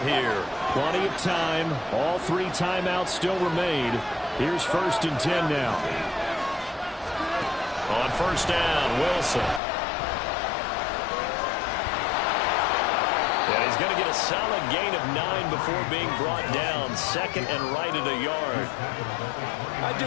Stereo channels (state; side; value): drops out; right; at 9.6 s